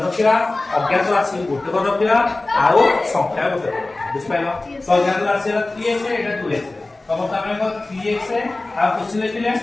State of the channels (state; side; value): quieter; right; 3.0 dB